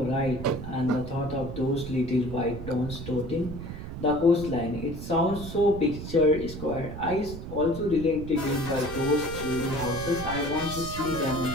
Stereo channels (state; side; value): noise; right; rumble, 9 dB below the sound